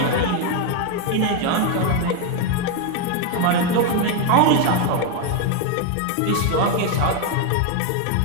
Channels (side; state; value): both; different; correlation 0.01